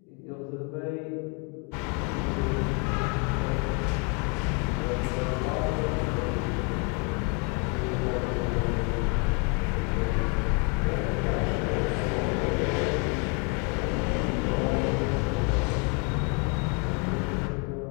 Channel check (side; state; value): right; quieter; 32.9 dB